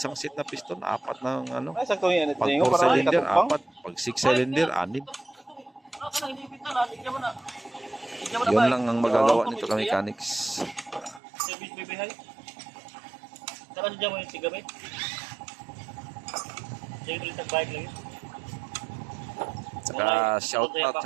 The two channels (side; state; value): left; drops out; at 11.2 s